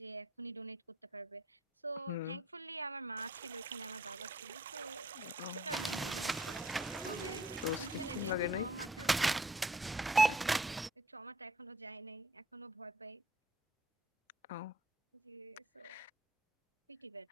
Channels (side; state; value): both; normal; correlation 0.59